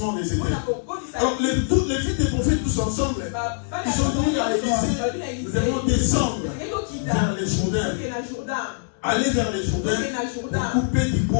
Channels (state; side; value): silent; right; digital silence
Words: des éternels. Alors, toutes les filles des prophètes, tous ensemble, ils ont dit à l'Élysée, nous devons descendre vers les Jourdains. Aller vers les Jourdains pour couper du